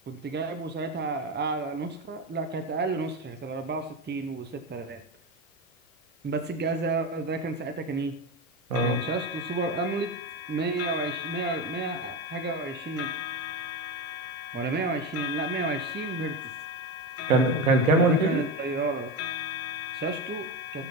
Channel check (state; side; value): normal; both; correlation 0.19